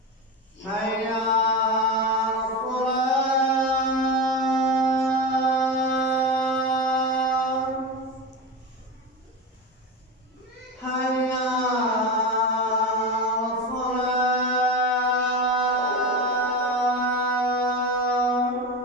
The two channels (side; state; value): both; normal; correlation 0.22